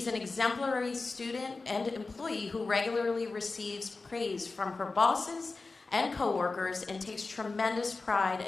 an exemplary student and employee who regularly receives praise from her bosses and coworkers and takes tremendous pride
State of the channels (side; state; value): right; quieter; 3.8 dB